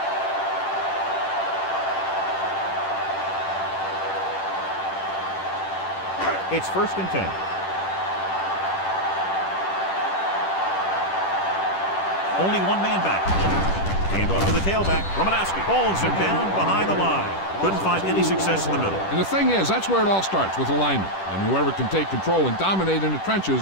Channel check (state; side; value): late; right; 10 ms